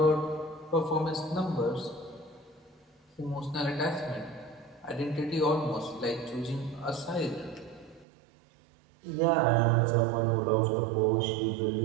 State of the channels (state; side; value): drops out; left; at 8.1 s